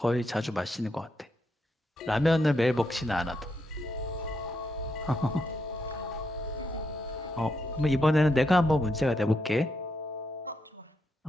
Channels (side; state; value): both; normal; correlation 0.80